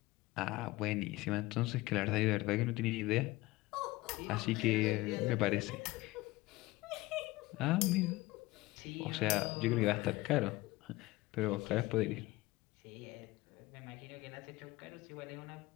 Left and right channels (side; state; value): right; quieter; 19.8 dB